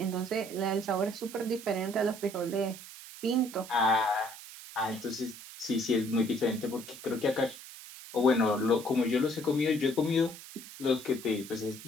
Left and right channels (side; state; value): right; noise; hiss, 15 dB below the sound